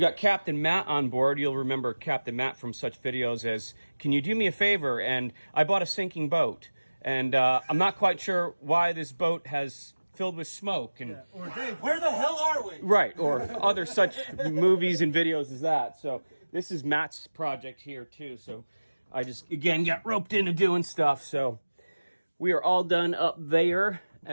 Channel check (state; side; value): inverted; both; correlation -1.00